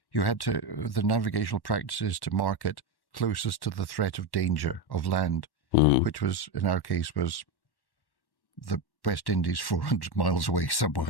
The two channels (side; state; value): right; late; 1.1 ms